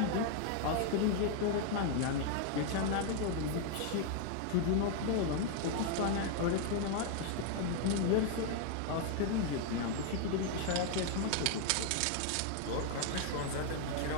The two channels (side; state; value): both; different; correlation 0.00